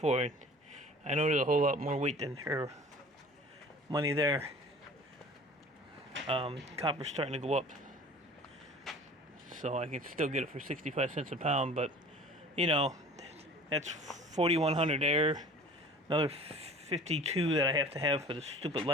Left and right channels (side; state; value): both; normal; correlation 0.44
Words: I know there's a whole lot more weight than her money there. Copper's starting to go up, so I can still get it for 65 cents a pound, but you know, that's 4,100 there, another 52 that I have to have for the stupid